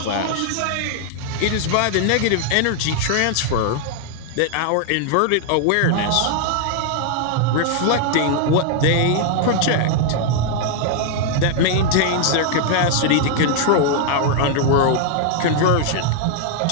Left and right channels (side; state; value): both; different; correlation 0.00